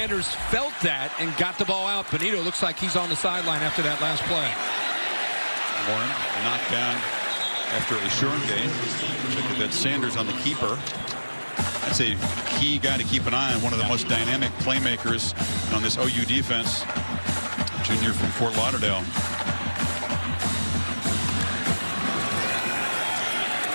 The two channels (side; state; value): both; inverted; correlation -1.00